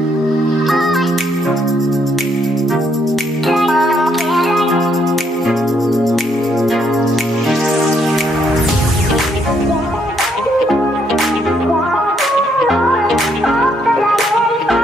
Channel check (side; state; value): both; normal; correlation 0.72